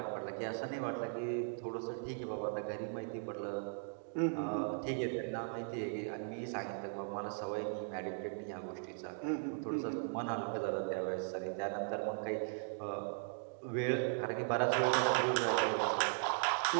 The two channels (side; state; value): left; silent; digital silence